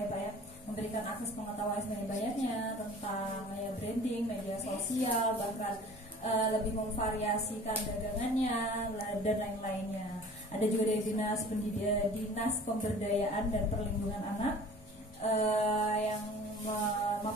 Pak ya, memberikan akses pengetahuan sebanyak-banyaknya tentang ya branding, media sosial, bahkan lebih memvariasikan dagangannya dan lain-lainnya. Ada juga dari Dinas Pemberdayaan dan Perlindungan Anak yang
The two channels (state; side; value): normal; both; correlation 0.45